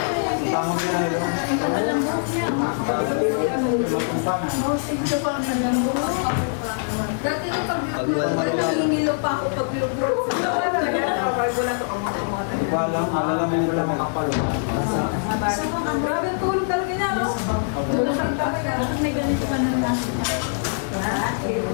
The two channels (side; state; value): right; silent; 57 dB below the other